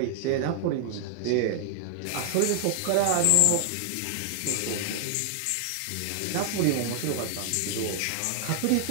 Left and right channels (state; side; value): different; both; correlation 0.00